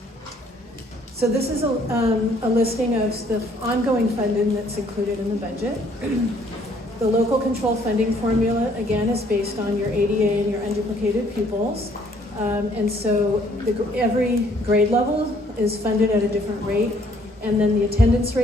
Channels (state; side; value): normal; both; correlation 0.63